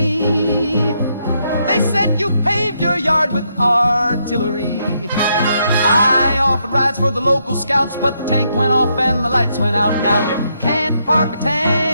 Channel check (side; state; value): both; inverted; correlation -0.77